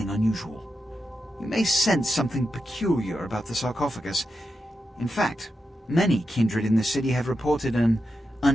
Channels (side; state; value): both; normal; correlation 0.88